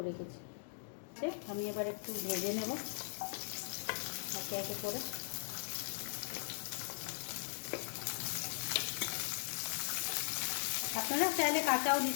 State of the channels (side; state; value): right; silent; digital silence